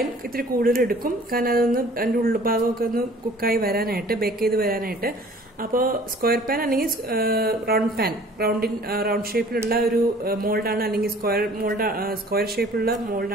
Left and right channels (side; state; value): both; normal; correlation 0.51